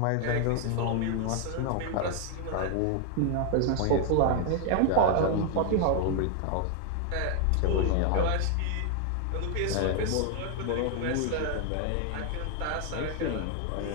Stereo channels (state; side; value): different; both; correlation 0.00